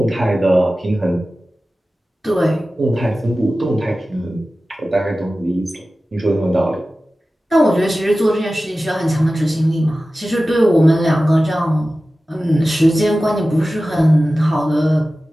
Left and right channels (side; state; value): both; normal; correlation 0.95